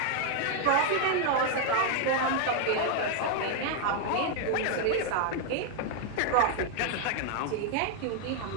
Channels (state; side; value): different; both; correlation 0.00